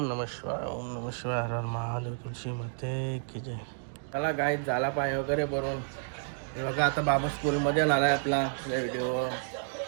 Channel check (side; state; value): left; silent; digital silence